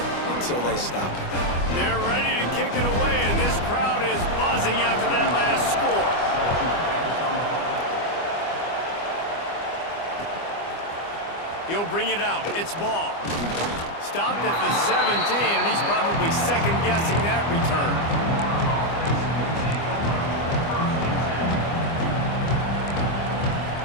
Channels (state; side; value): late; right; 25 ms